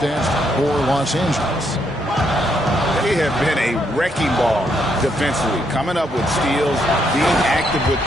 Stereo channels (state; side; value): normal; both; correlation 0.75